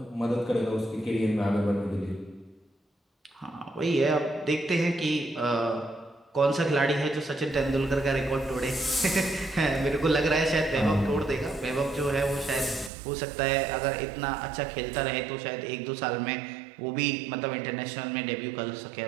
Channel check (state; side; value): drops out; left; at 12.9 s